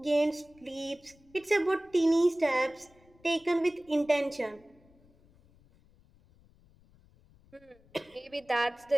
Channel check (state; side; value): noise; left; rumble, 29 dB below the sound